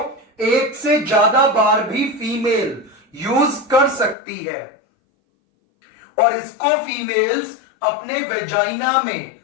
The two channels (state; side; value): drops out; right; at 4.2 s